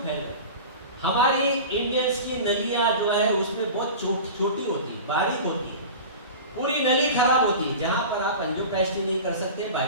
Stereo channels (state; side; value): inverted; both; correlation -0.33